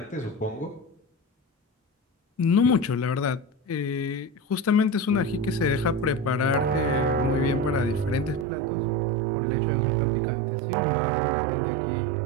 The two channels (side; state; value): left; drops out; at 8.5 s